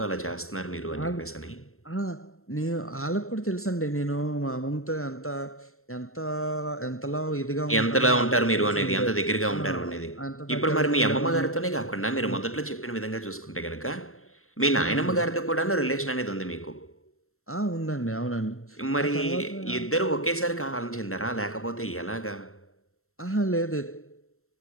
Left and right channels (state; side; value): late; right; 0.62 ms